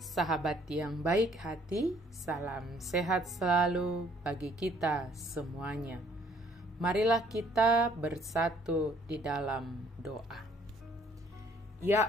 yang baik hati, salam sehat selalu bagi kita semuanya. Marilah kita bersatu di dalam doa. Ya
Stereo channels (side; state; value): both; normal; correlation 0.61